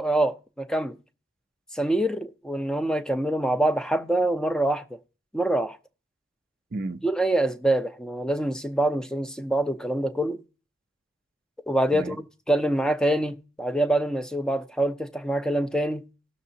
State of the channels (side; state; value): both; normal; correlation 0.85